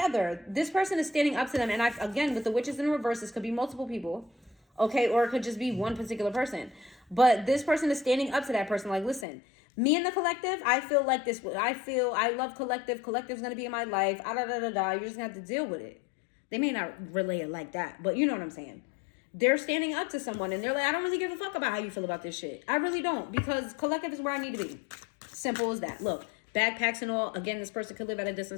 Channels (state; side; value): drops out; right; at 9.2 s